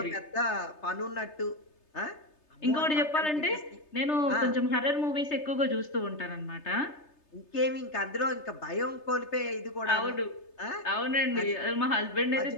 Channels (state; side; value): late; right; 3.3 ms